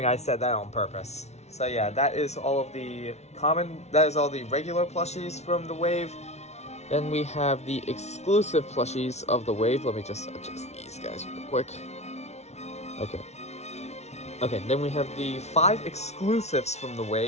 I said that on purpose. So yeah, that is all the regular plushies from the wave. Then we have the exclusive plushies of the wave. Let me just adjust these guys real quick. Okay. Okay, then we have the 5 exclusives from the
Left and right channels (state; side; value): late; right; 0.32 ms